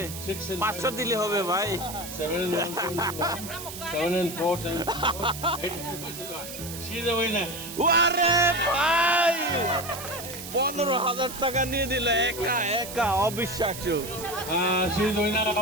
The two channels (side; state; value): right; noise; hiss, 10 dB below the sound